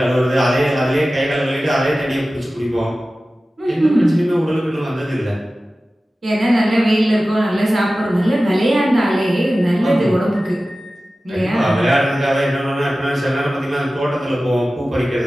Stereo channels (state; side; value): normal; both; correlation 0.96